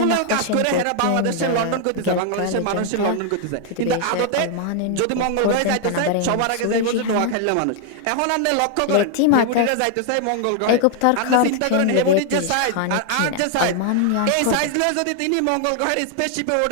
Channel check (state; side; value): different; both; correlation 0.00